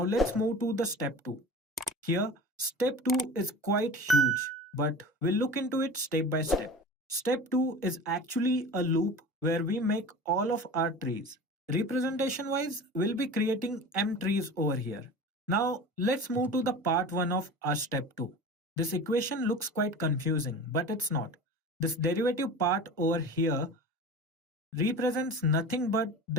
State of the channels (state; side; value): normal; both; correlation 0.35